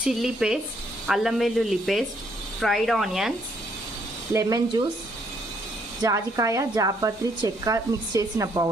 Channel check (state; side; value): normal; both; correlation 0.70